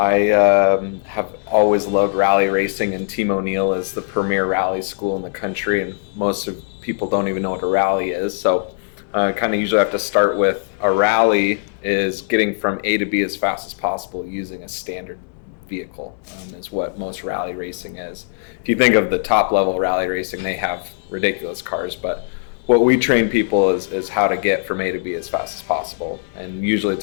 have always loved rally racing, and Team O'Neill is the premier rally school in the country, and most of people don't even know what a rally is. So kind of usually have to start with a rally is getting from A to B as fast as possible using a standard vehicle, is what most rally racing is. If you think of the top level rally racing, they have ridiculous cars, but what we train people is how to get from A to B as fast as possible. And usually it's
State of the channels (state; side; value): silent; right; digital silence